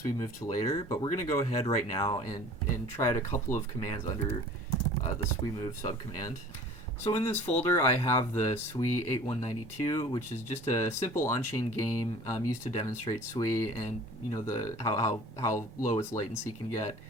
Move to later, but we're going to go ahead right now and try out a couple of commands under the Sui Move subcommand. So in this folder, I have the Sui 8192, which is just a simple on-chain game used to demonstrate Sui and how low its latency can get.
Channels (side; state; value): both; normal; correlation 0.45